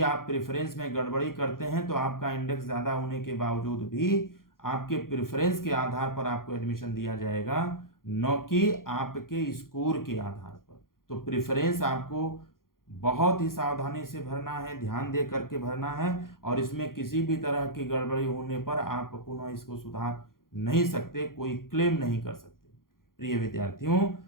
आप प्रेफरेंस में गड़बड़ी करते हैं तो आपका इंडेक्स ज़्यादा होने के बावजूद भी आपके प्रेफरेंस के आधार पर आपको एडमिशन दिया जाएगा, न कि आपके स्कोर के आधार पर। तो प्रेफरेंस आपको बहुत ही सावधानी से भरना है, ध्यान दे करके भरना है, और इसमें किसी भी तरह की गड़बड़ी होने पर आप पुनः इसको सुधार नहीं सकते, कोई क्लेम नहीं कर सकते। प्रिय विद्यार्थियों,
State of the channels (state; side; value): late; right; 0.91 ms